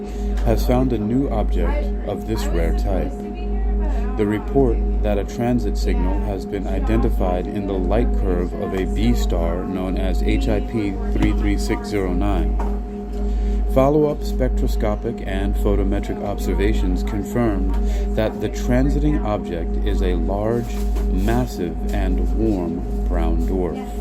has found a new object of this rare type. The report that a transit signal has been identified in the light curve of a B star known as HIP 33609. Follow-up spectroscopic and photometric observations confirmed that the transiting object is a large, massive, and warm brown dwarf.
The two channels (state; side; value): identical; both; correlation 1.00